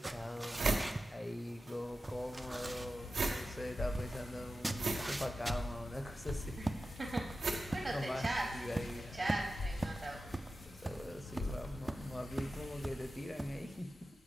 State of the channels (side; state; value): both; normal; correlation 0.93